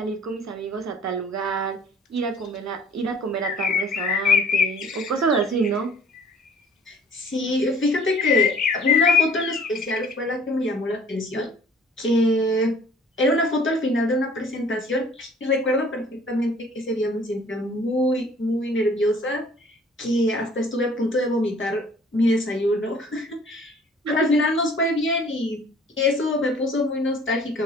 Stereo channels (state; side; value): normal; both; correlation 0.53